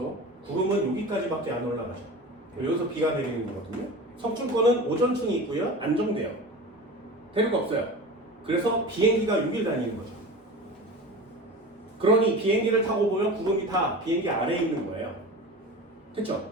구름은 여기까지밖에 안 올라가죠. 여기서 비가 내리는 거거든요. 성층권은 오존층이 있고요. 안정돼요. 대륙 없어요. 그래서 비행기가 6일 다니는 거죠. 그러니 비행기를 타고 보면 구름이 다 비행기 아래에 있는 거예요. 됐죠?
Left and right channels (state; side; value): normal; both; correlation 0.32